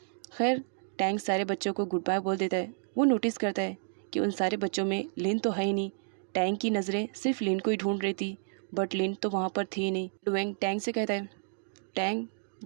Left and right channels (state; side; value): silent; left; digital silence